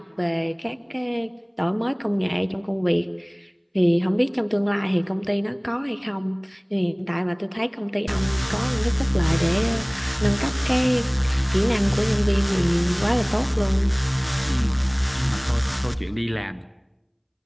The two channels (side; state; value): both; identical; correlation 1.00